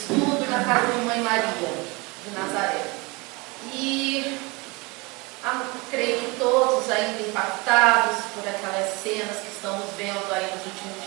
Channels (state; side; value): quieter; left; 26.5 dB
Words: na casa de Mãe Maria, de Nazaré. E creio que todos ainda impactados por aquelas cenas que estamos vendo aí nos últimos